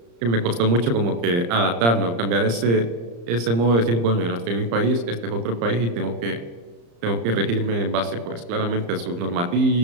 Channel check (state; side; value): late; left; 35 ms